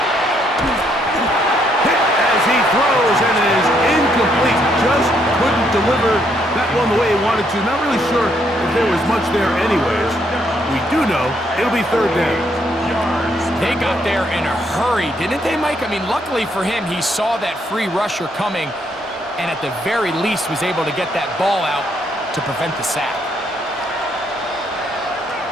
Hit as he throws, and it is incomplete. Just couldn't deliver that one the way he wanted to. Not really sure if there was much there anyways. We do know it'll be 3rd down. They got there in a hurry, didn't they, Mike? I mean, luckily for him, he saw that free rusher coming and at the very least was able to get that ball out to prevent the sack.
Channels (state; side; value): normal; both; correlation 0.72